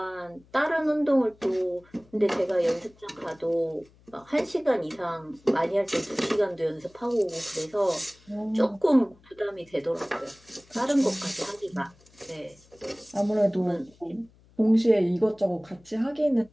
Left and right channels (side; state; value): left; noise; hum, 29 dB below the sound